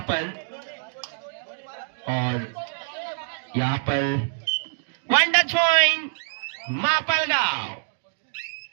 पर. और यहाँ पर 1 touch point मापलगाव.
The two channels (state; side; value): silent; left; digital silence